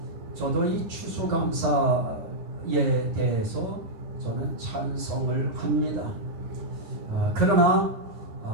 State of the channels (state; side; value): late; left; 9.4 ms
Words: 저도 이 추수감사에 대해서 저는 찬성을 합니다. 그러나